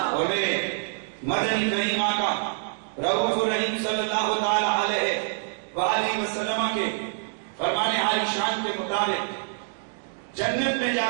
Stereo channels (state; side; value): silent; left; digital silence